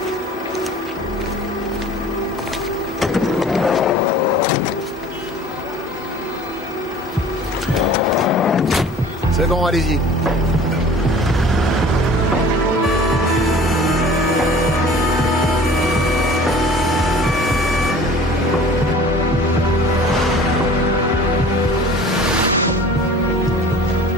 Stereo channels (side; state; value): both; normal; correlation 0.45